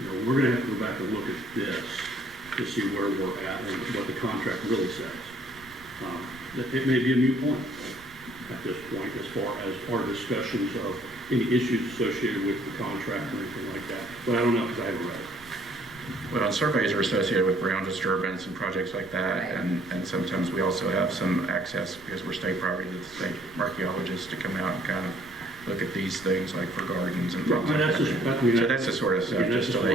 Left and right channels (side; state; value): right; noise; rumble, 24 dB below the sound